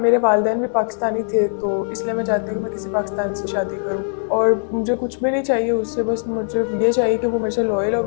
वालिदैन भी पाकिस्तानी थे, तो इसलिए मैं चाहती हूँ कि मैं किसी पाकिस्तान से शादी करूँ। और मुझे कुछ भी नहीं चाहिए उससे, बस मुझे ये चाहिए कि वो मेरे से लॉयल और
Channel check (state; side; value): silent; right; 65 dB below the other